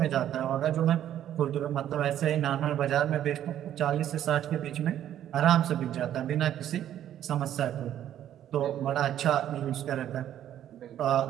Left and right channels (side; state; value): left; quieter; 11.2 dB